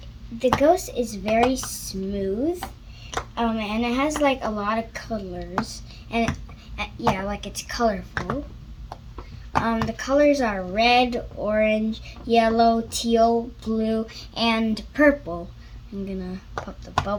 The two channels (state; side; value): identical; both; correlation 1.00